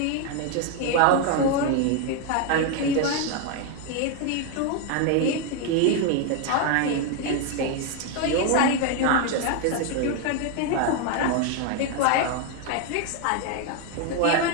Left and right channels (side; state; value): both; different; correlation 0.01